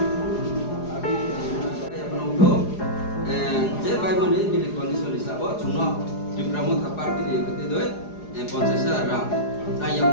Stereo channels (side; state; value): right; late; 4.8 ms